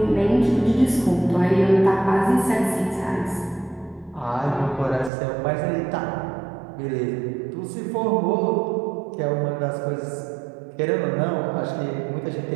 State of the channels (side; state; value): left; drops out; at 5.1 s